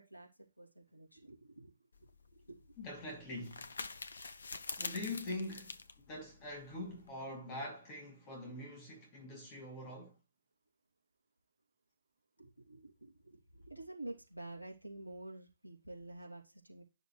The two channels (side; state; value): both; inverted; correlation -0.60